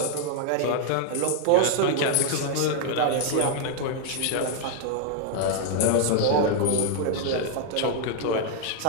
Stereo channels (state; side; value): different; both; correlation 0.00